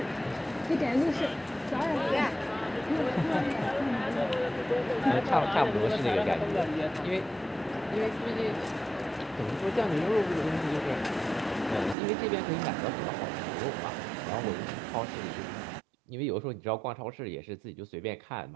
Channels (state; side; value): drops out; left; at 12.0 s